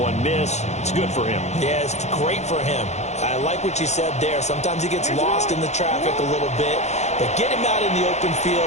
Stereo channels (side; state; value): right; late; 0.33 ms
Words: miss. It's good for him. Yeah, it's great for him. I like what you said there. Sometimes he gets lost in the traffic a little bit, but get him out in the open